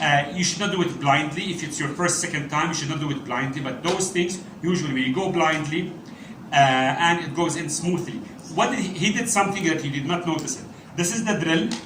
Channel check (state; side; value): identical; both; correlation 1.00